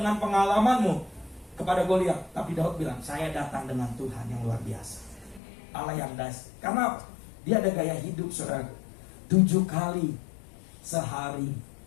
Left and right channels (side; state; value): right; drops out; at 5.4 s